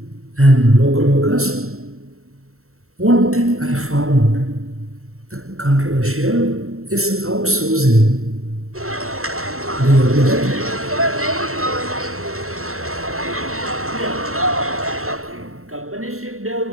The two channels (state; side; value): late; left; 0.63 ms